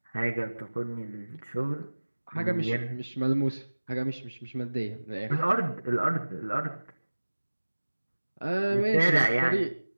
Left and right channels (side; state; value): both; inverted; correlation -1.00